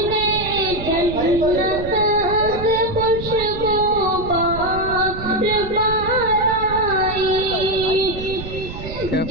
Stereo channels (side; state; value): right; noise; rumble, 10 dB below the sound